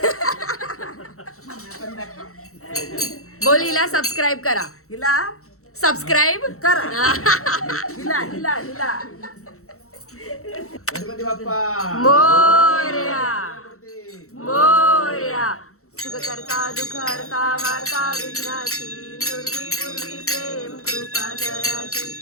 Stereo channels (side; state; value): right; late; 0.64 ms